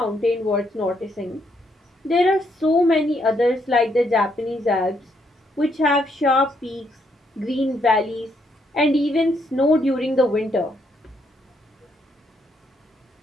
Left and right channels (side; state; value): both; normal; correlation 0.74